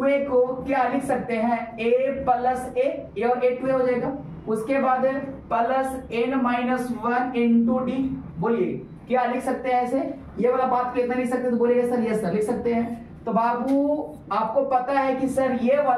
को क्या लिख सकते हैं, a प्लस a और a 2a हो जाएगा। उसके बाद प्लस n-1 इंटू डी, बोलिए क्या लिख सकते हैं ऐसे, ये वाला बात को इतना लिख सकते हैं, तो बोलिएगा सर यस सर लिख सकते हैं। तो बाबू आपको पता है कि सर ये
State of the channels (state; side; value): identical; both; correlation 1.00